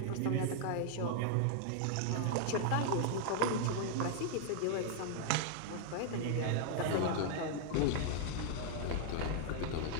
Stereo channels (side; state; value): both; different; correlation 0.00